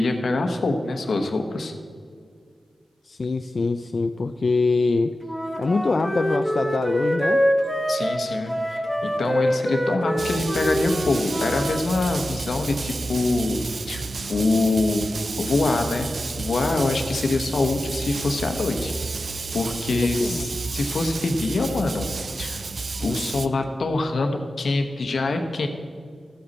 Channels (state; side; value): normal; both; correlation 0.93